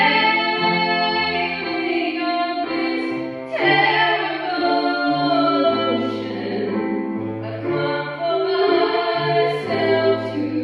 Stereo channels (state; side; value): identical; both; correlation 1.00